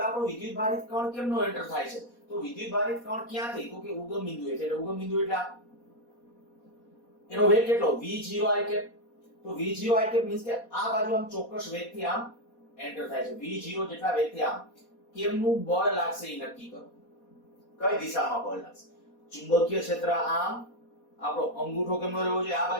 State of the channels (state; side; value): late; right; 4.2 ms